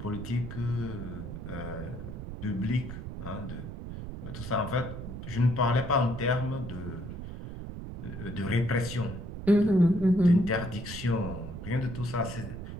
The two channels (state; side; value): noise; right; rumble, 8 dB below the sound